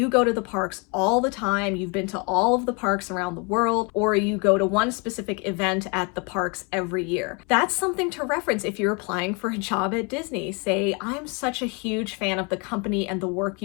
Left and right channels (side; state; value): right; quieter; 32.3 dB